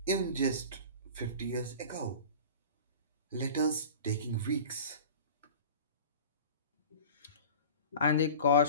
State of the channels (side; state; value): both; inverted; correlation -0.38